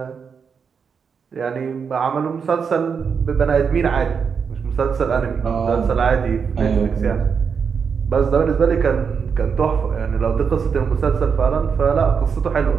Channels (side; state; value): left; quieter; 6.2 dB